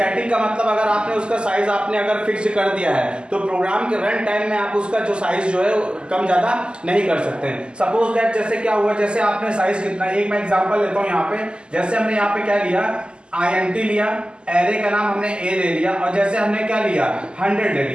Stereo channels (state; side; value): late; left; 0.050 ms